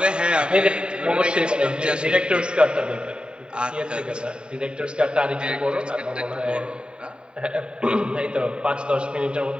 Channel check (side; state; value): left; late; 0.050 ms